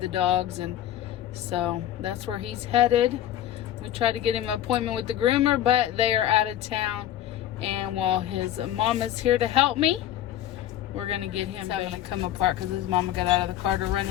dogs, and so that's where he's headed. We tried to get him an appointment with the groomer, but they are out of town. And while his mama's here to help me, we're gonna get him having to come apart because his mama got out of the car to run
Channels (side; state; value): right; quieter; 12.0 dB